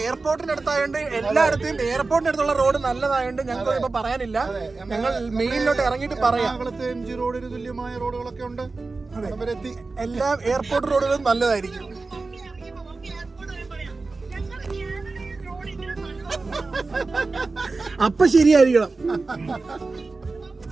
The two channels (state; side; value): quieter; left; 3.8 dB